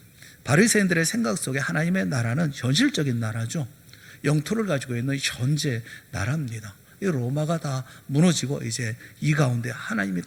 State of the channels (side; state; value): both; identical; correlation 1.00